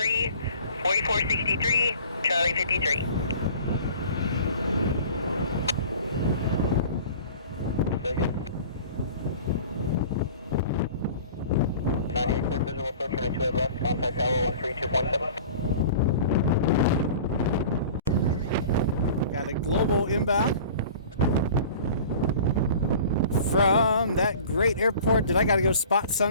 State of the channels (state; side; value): inverted; both; correlation -0.43